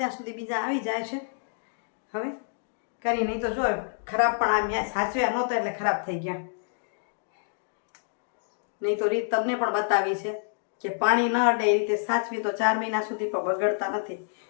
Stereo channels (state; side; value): silent; right; digital silence